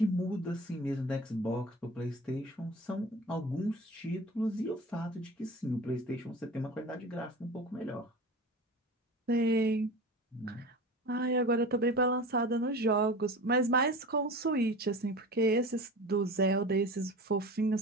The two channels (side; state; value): both; normal; correlation 0.34